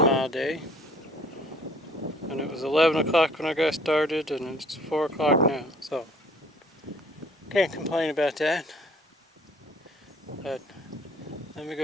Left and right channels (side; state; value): both; normal; correlation 0.56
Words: day. And it was 11 o'clock when I got started, and it's 4 o'clock now. So can't complain about that. But let me